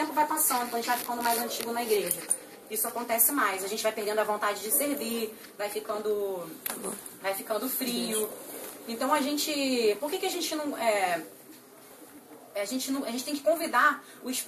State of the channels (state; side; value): identical; both; correlation 1.00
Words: vai passando, quando a gente vai ficando mais antigo na igreja. Isso acontece mais. A gente vai perdendo a vontade de servir, vai ficando frio. Então a gente... Por que a gente não... A gente tem que convidar o